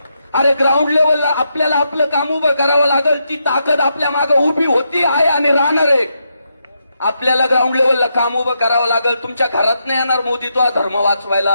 अरे ग्राउंड लेवलला आपल्याला आपलं काम उभं करावं लागेल. ती ताकद आपल्या मागे उभी होती, आहे आणि राहणार आहे. आपल्याला ग्राउंड लेवलला काम उभं करावं लागेल. तुमच्या घरात नाही येणार मोदी तुला धर्म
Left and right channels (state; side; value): inverted; both; correlation -0.82